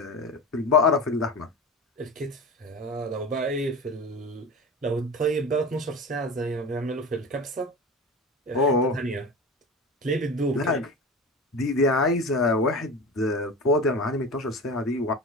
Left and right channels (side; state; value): both; normal; correlation 0.30